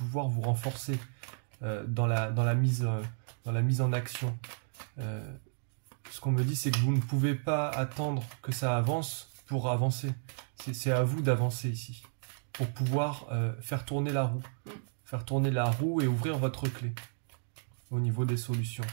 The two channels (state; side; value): silent; left; digital silence